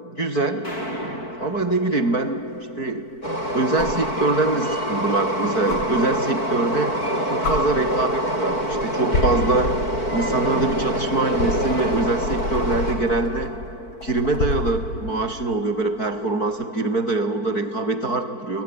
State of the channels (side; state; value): right; late; 4.5 ms